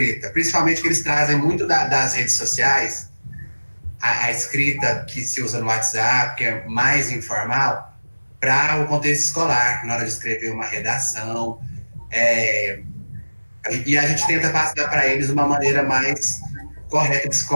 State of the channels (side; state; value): both; inverted; correlation -1.00